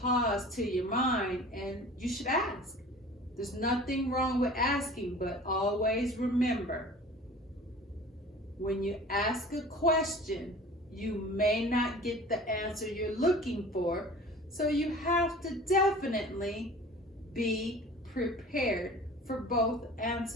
pause to your mind, and you should ask. There's nothing wrong with asking, but always remember, when you ask a question, you may not get the answer you're looking for, so you have to definitely be prepared for both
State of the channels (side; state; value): both; normal; correlation 0.43